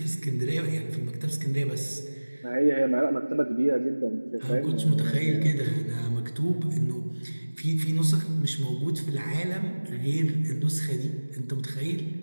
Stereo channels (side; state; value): both; inverted; correlation -1.00